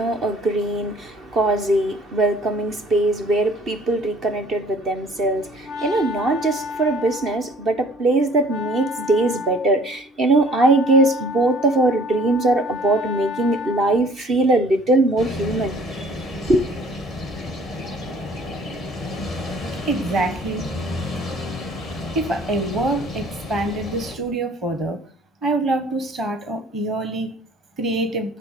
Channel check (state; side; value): normal; both; correlation 0.53